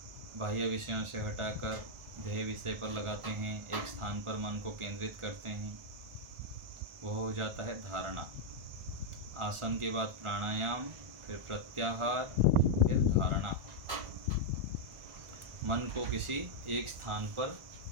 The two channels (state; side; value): late; left; 1.4 ms